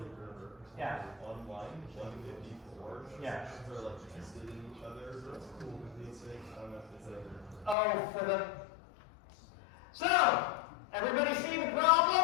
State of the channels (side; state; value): right; drops out; at 7.8 s